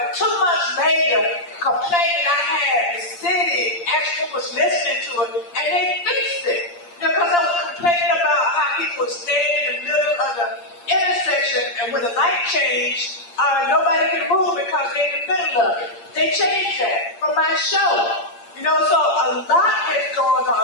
2 months later, the complaint that I had, the city actually was listening to it, and they fixed it. Because I was complaining about how people would stand in the middle of the intersection, and when the light changed, nobody could move because they're in the middle of it. They changed that from my show. You know, so a lot has gone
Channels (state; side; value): late; right; 8.6 ms